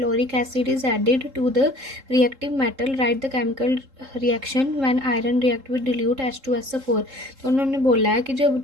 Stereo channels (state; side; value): late; left; 3.7 ms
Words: acid is added to the reactive metal, write the chemical reaction when iron react with dilute H2SO4। तो उन्होंने बोला है कि जब